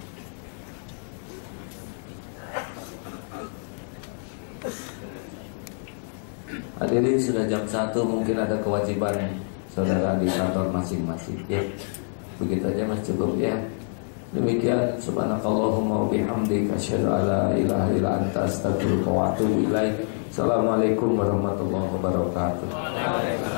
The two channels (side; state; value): right; silent; digital silence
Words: Hadirin, sudah jam 1, mungkin ada kewajiban saudara di kantor masing-masing. Ya, begitu aja Mas, cukup ya. Demikian, subhanakallahumma wa bihamdika asyhadu an la ilaha illa anta astaghfiruka wa atubu ilaik. Assalamualaikum warahmatullahi wabarakatuh.